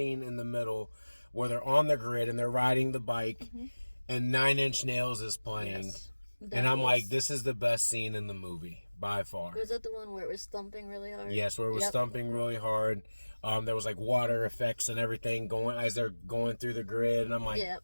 in the middle where they're on the grid and they're riding the bike. Mm-hmm. And 9 Inch Nails is playing. Yes, and I'm like, this is the best scene in the movie, by far. Was that the one where it was thumping really hard? Yes, where it was thumping really hard. There was like water effects and everything going as they're going through the grid. And I'm like,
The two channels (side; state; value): both; inverted; correlation -1.00